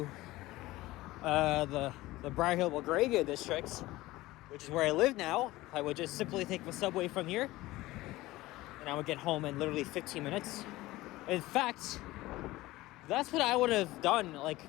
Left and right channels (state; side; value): quieter; right; 18.3 dB